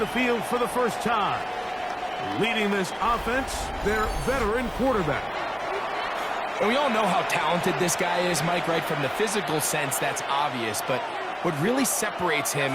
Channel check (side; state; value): both; identical; correlation 1.00